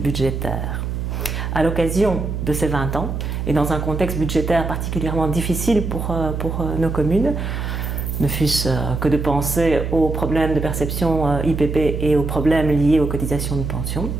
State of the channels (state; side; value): noise; right; hum, 3 dB below the sound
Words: À l'occasion de ces 20 ans, et dans un contexte budgétaire particulièrement difficile pour nos communes, ne fût-ce que de penser aux problèmes de perception IPP et aux problèmes liés aux cotisations de pension,